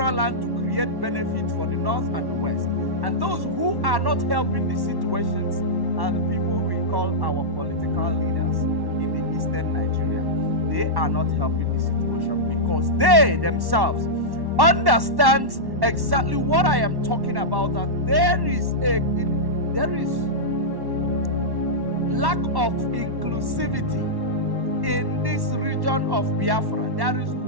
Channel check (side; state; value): left; late; 1.1 ms